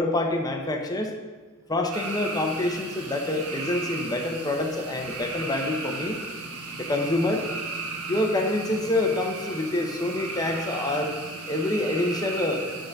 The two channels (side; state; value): both; normal; correlation 0.44